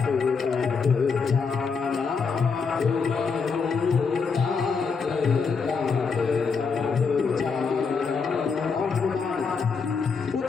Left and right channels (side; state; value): right; quieter; 5.2 dB